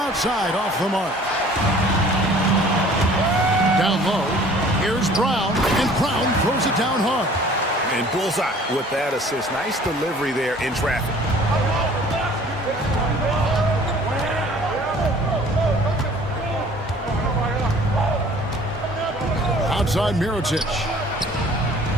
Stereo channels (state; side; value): normal; both; correlation 0.51